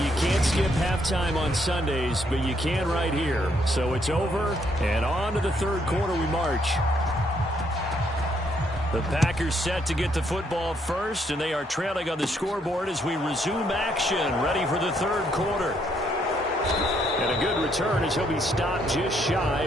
can't skip halftime on Sundays, but you can right here. So it's over, and on to the 3rd quarter we march. The Packers set to get the football first, and they are trailing on the scoreboard as we resume action, ready for the 3rd quarter. And a good return as he'll be stopped just shy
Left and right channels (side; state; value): both; normal; correlation 0.72